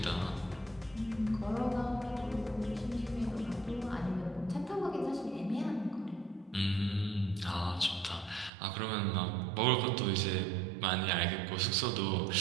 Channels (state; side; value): drops out; left; at 8.5 s